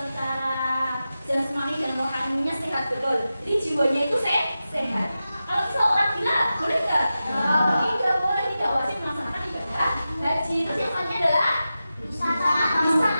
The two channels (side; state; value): both; inverted; correlation -0.93